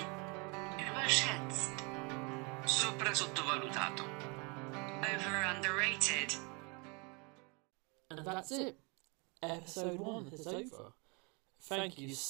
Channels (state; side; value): quieter; left; 31.3 dB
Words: Überschätzt. Sopra sottovalutato. Over underrated. And that's it. Episode 1 is over. Thank you